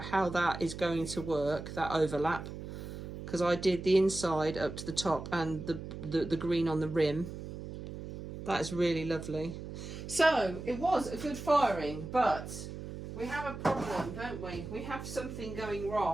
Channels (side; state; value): right; noise; hum, 9 dB below the sound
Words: how that is going to work, that overlap, because I did the inside up to the top and the green on the rim. That is really lovely. So it was a good firing, but we have a problem, don't we? We have something going